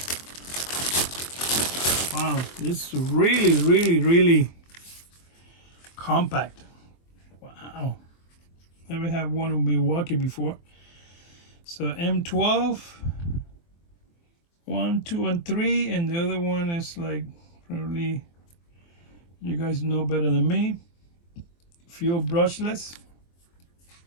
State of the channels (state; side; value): late; right; 23 ms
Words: wow, this is really compact. Wow. Never had one of Milwaukee before. So M12, 1, 2, and 3, and the other one is like probably you guys know better than me. Fuel brushless.